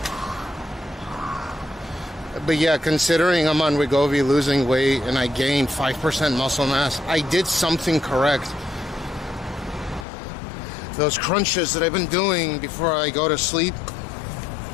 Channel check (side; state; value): right; drops out; at 10.1 s